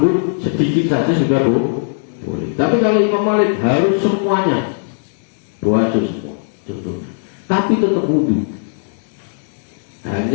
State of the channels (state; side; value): silent; right; digital silence